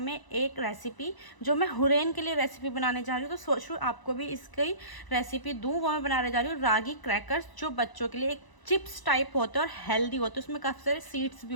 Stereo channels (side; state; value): right; late; 1.0 ms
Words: एक रेसिपी, जो मैं हुरैन के लिए रेसिपी बनाने जा रही हूँ। तो सोच रही हूँ आपको भी इसकी रेसिपी दूँ। वो मैं बनाने जा रही हूँ रागी क्रैकर्स, जो बच्चों के लिए एक चिप्स टाइप होते हैं और हेल्दी होते हैं, उसमें काफ़ी सारे सीड्स भी